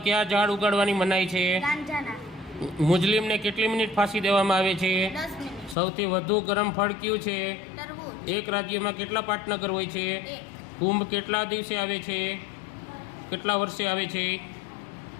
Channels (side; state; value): right; drops out; at 5.8 s